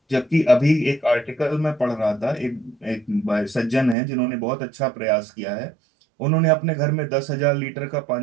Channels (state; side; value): drops out; left; at 4.0 s